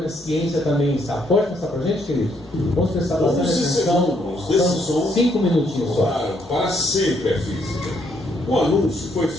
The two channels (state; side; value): normal; both; correlation 0.72